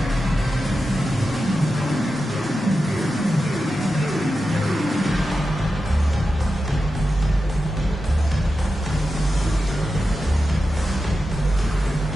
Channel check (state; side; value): normal; both; correlation 0.91